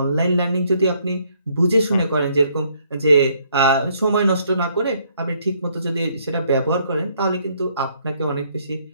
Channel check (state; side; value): inverted; both; correlation -0.68